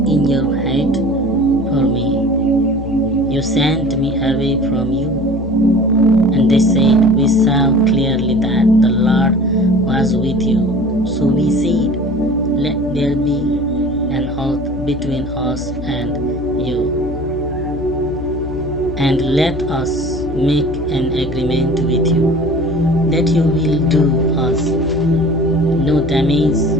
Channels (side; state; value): left; noise; hum, 9 dB below the sound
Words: in your hate for me you sent me away from you?" And they said, "We saw clearly that the Lord was with you. So we said, let there be an oath between us and you, and let us make an agreement with you, that you will do us no damage,